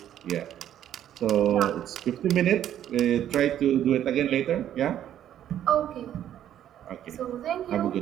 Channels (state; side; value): quieter; left; 10.9 dB